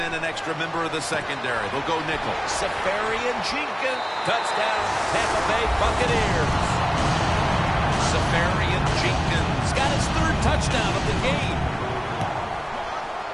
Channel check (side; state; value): both; identical; correlation 1.00